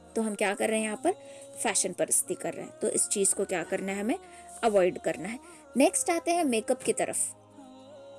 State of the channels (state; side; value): identical; both; correlation 1.00